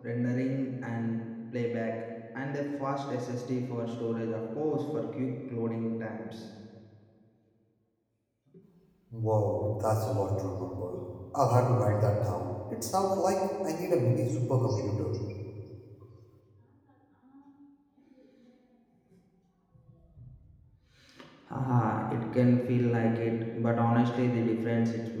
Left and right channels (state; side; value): identical; both; correlation 1.00